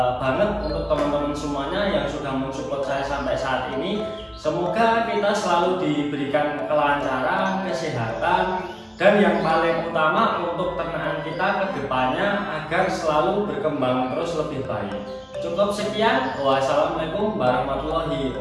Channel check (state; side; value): identical; both; correlation 1.00